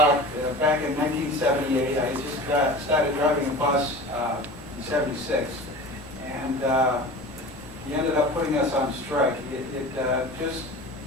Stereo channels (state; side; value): normal; both; correlation 0.36